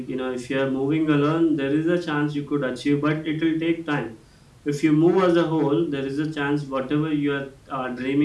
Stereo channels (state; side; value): identical; both; correlation 1.00